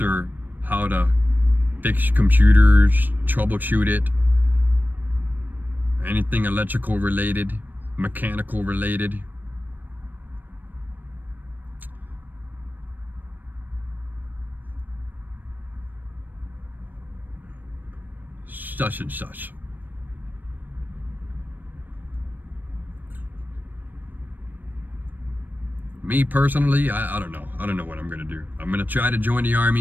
how to fix computers, troubleshoot it, anything electrical related, mechanical related. Such and such. Me personally, I don't know. I don't know what I'm gonna do. I'm gonna try to join the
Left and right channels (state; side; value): late; left; 0.090 ms